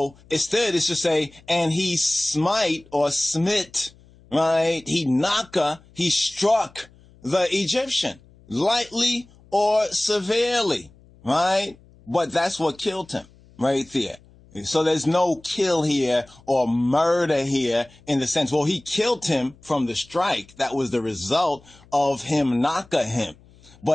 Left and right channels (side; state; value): left; noise; hum, 27 dB below the sound